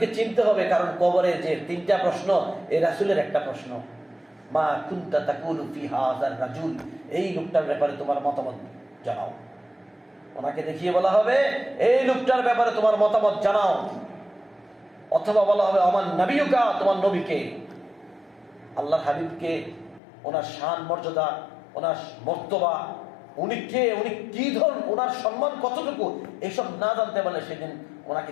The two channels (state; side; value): drops out; right; at 20.0 s